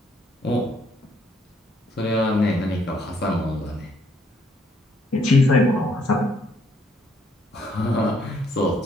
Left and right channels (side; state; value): both; normal; correlation 0.68